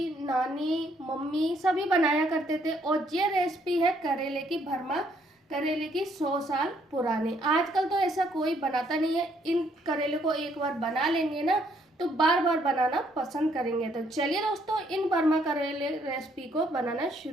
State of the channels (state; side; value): normal; both; correlation 0.69